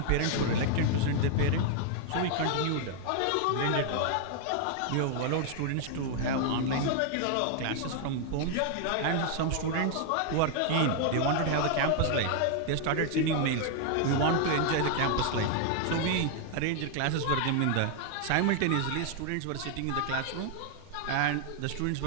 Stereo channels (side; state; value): both; different; correlation 0.00